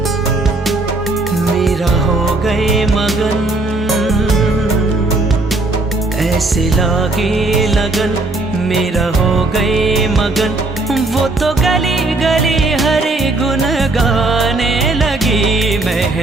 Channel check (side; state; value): left; quieter; 3.0 dB